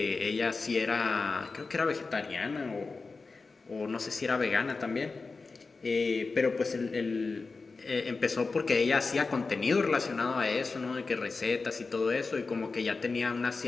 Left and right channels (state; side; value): quieter; right; 4.1 dB